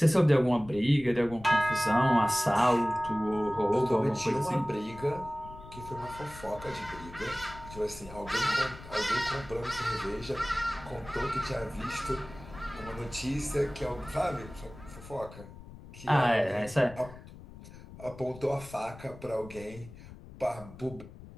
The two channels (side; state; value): left; noise; rumble, 17 dB below the sound